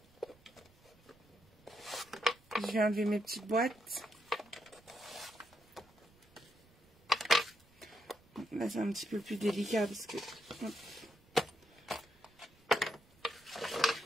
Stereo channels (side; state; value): right; noise; rumble, 29 dB below the sound